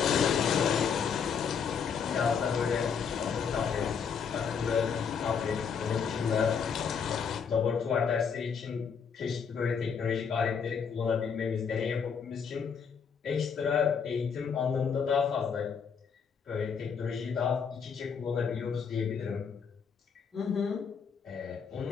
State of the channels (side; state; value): right; quieter; 6.5 dB